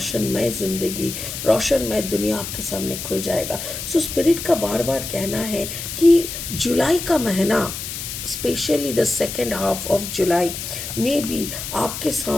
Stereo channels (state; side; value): noise; left; hiss, 7 dB below the sound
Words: ज़िंदगी, रोशनमय दुनिया आपके सामने खुल जाएगा। सो स्पिरिट का बार बार कहना है कि जुलाई का महीना, specially the second half of July में भी आपके